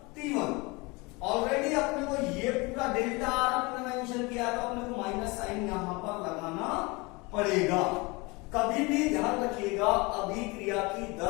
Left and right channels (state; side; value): quieter; right; 25.9 dB